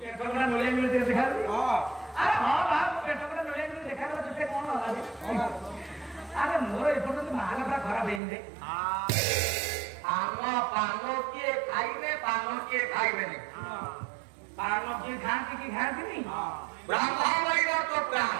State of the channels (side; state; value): left; drops out; at 8.2 s